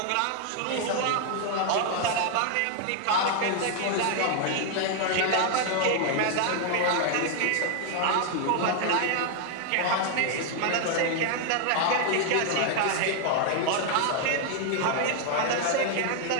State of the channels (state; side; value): different; both; correlation 0.00